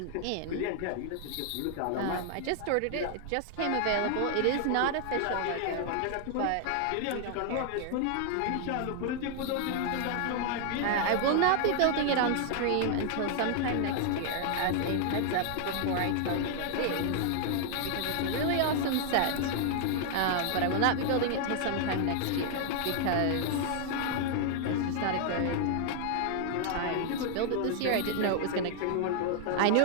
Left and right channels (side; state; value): both; different; correlation 0.00